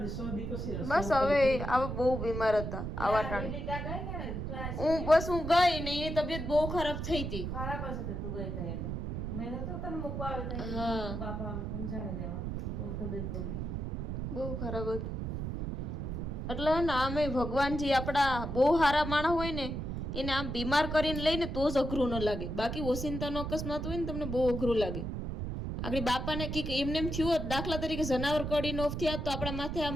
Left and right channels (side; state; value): right; noise; rumble, 4 dB below the sound